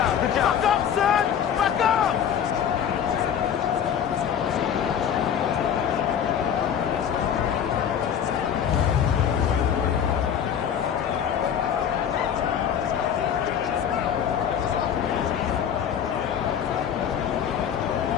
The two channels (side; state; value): right; quieter; 8.6 dB